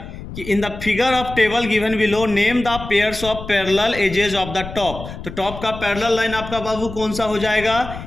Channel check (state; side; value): noise; left; rumble, 11 dB below the sound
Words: in the figure of table given below, name the pairs of parallel edges of the top. तो top का parallel line आपका बाबू कौन सा हो जाएगा?